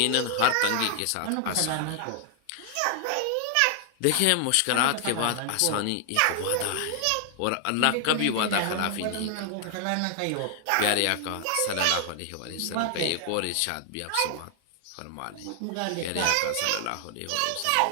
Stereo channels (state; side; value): different; both; correlation 0.00